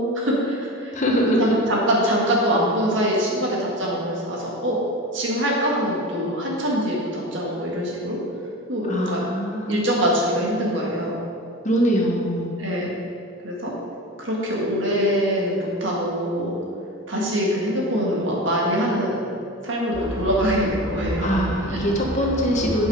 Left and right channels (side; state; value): both; normal; correlation 0.29